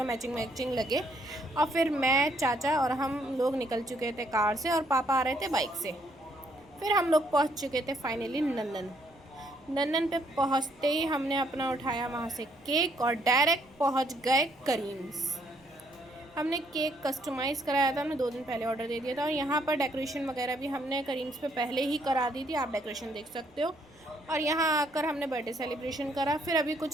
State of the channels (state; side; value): noise; right; rumble, 30 dB below the sound